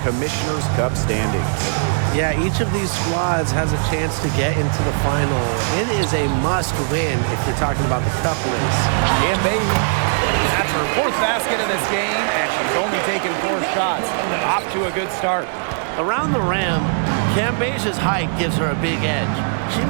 Cup standings. Yeah, each of these squads has a chance to get into the final. It is a must-win if you're talking about the cup race. Cambage, that's her 4th basket of this game, and she's only taken 4 shots. Off to a good start. Around the rim, Cambage's height gives her a big edge. She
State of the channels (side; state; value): left; silent; digital silence